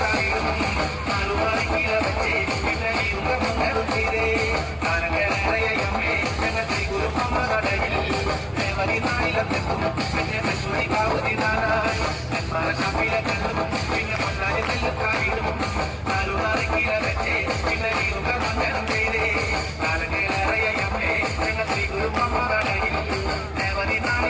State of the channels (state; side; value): identical; both; correlation 1.00